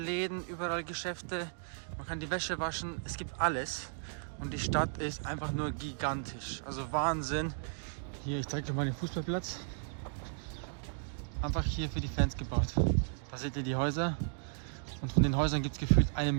überall Geschäfte. Man kann die Wäsche waschen, es gibt alles. Und die Stadt ist einfach nur gigantisch, also Wahnsinn. Hier, ich zeige euch mal den Fußballplatz. Einfach hier für die Fans gebaut. Da seht ihr die Häuser und von den Häusern gibt es gefühlt 1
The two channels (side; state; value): left; silent; digital silence